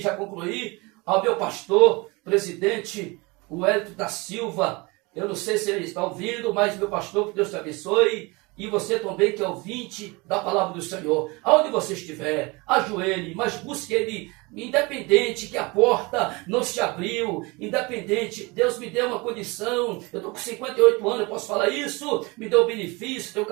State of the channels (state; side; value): quieter; left; 25.7 dB